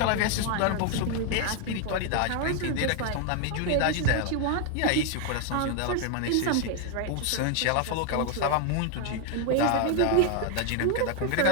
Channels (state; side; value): different; both; correlation 0.01